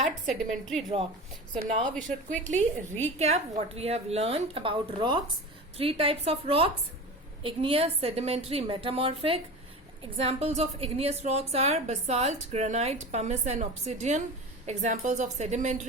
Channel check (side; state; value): both; normal; correlation 0.31